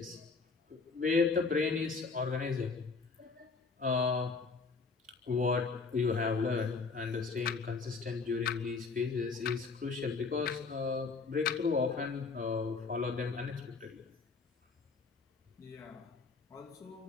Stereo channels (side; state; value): right; quieter; 4.6 dB